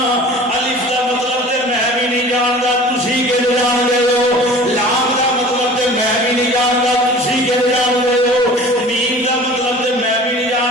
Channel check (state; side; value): normal; both; correlation 0.43